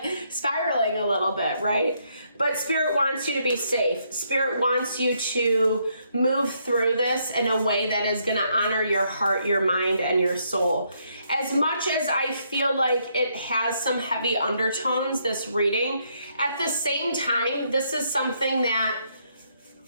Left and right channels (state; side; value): inverted; both; correlation -0.74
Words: spiraling a little bit, right? But Spirit wants you to be safe. Spirit wants you to move through this in a way that is going to honor your heart, your mind, and your soul. As much as I feel like it has some heavy undertones, this reading, at the same time, this is something that